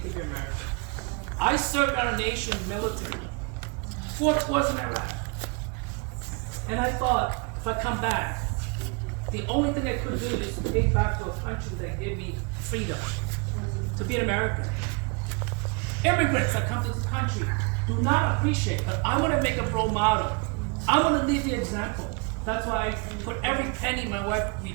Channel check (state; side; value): quieter; left; 31.9 dB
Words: be American. I served our nation's military, 4 tours in Iraq. And I thought, if I come back, the only thing I could do is to take back to a country that gave me freedom, to be an American. Immigrants that come to this country do not appreciate, but I want to make a role model. I want to lead the example. That's why I put every penny my wife